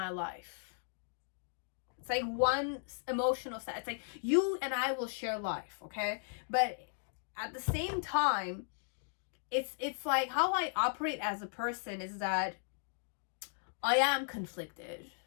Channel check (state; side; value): silent; right; digital silence